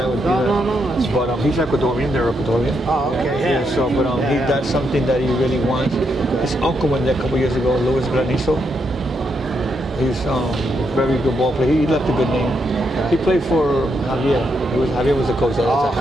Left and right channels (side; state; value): both; normal; correlation 0.79